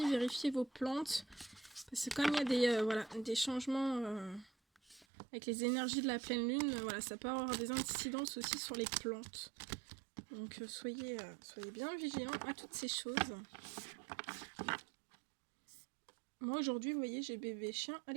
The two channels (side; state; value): left; drops out; at 5.1 s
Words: vérifiez vos plantes. Parce que comme il y a des changements avec les énergies de la pleine lune, voilà, ça peut avoir des incidences aussi sur les plantes. Donc soyez bien vigilants à toutes ces choses. Moi aujourd'hui, vous voyez, j'ai bébé chien, elle